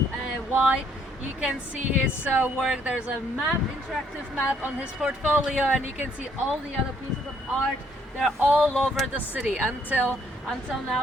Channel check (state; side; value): normal; both; correlation 0.67